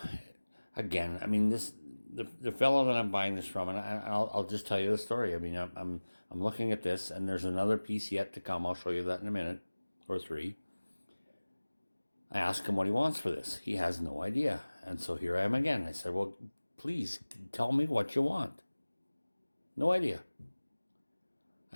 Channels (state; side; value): inverted; both; correlation -1.00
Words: again, I mean, the fellow that I'm buying this from, and I'll just tell you the story. I mean, I'm looking at this, and there's another piece yet to come. I'll show you that in a minute or three. I asked him what he wants for this. He has no idea. And so here I am again. I said, well, please tell me what you want. No idea.